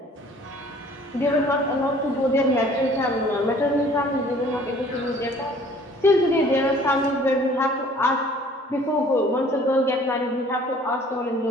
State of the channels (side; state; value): both; normal; correlation 0.53